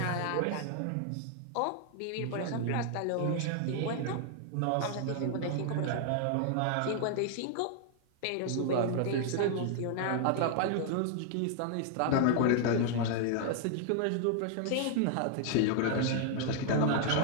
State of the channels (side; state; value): both; different; correlation 0.00